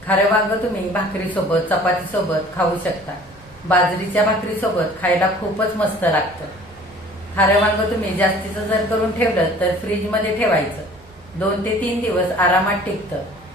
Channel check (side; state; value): both; normal; correlation 0.50